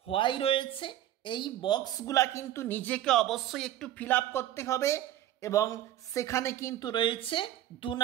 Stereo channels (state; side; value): quieter; left; 12.5 dB